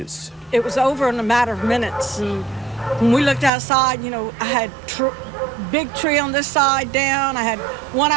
It was over in a matter of minutes. And when we looked outside, you know, I had big tree on this side down. I had one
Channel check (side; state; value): left; drops out; at 3.5 s